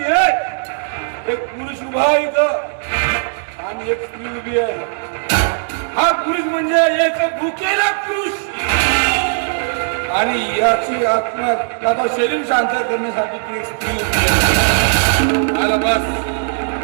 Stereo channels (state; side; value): silent; left; digital silence